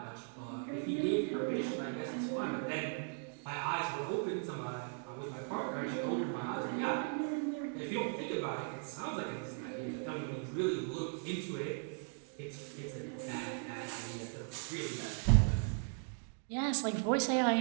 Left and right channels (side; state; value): left; silent; 52 dB below the other